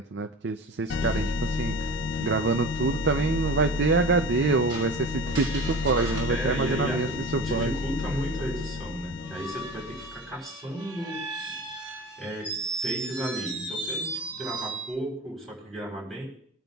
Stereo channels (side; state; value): both; normal; correlation 0.34